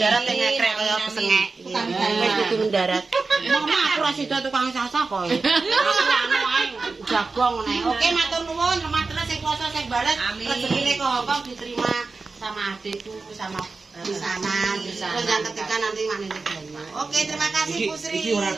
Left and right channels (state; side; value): quieter; left; 4.0 dB